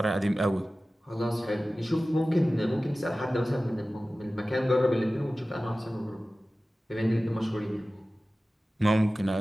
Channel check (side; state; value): both; normal; correlation 0.96